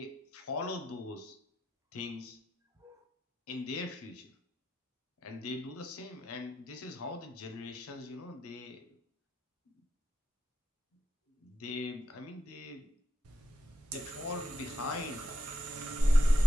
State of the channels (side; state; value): both; normal; correlation 0.84